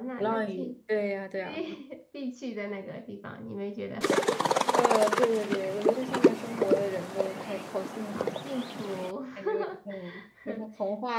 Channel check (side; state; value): both; identical; correlation 1.00